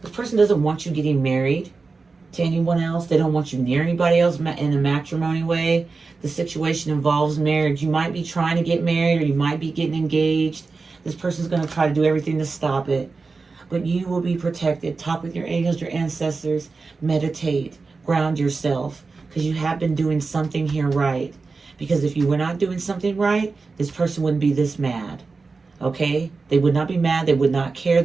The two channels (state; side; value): quieter; left; 4.2 dB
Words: want you getting married to anyone else. They don't want you near anybody else in a matrimony way. The situation involves marriage. You might be trying to get married, or you might be getting engaged. This person's going to try to do everything to stop it. But you will be protected. Talk with your angels, your ancestors. Meditate. Ground yourself. Because you have been doing something here right. Because if you were not doing something right, this person wouldn't be this mad. Okay? They would not be mad. They would not care.